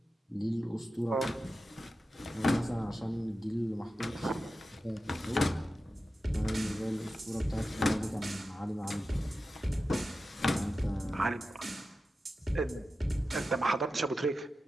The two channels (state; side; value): normal; both; correlation 0.92